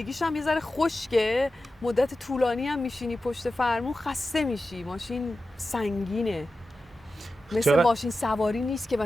هم یه ذره خشکه، مدت طولانی هم میشینی پشت فرمون خسته میشی، ماشین سنگینه، مثل ماشین سواری نیست که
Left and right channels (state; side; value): normal; both; correlation 0.93